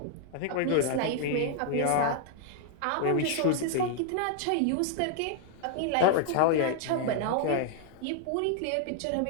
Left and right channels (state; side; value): different; both; correlation 0.00